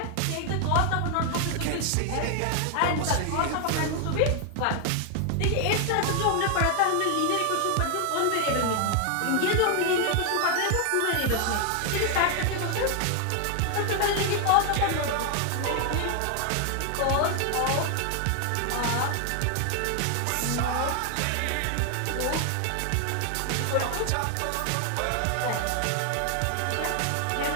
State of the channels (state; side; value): different; both; correlation 0.00